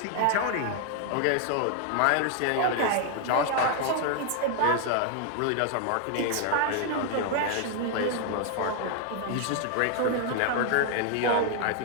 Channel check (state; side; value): different; both; correlation 0.00